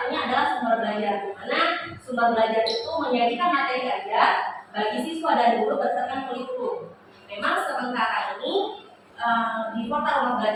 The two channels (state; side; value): identical; both; correlation 1.00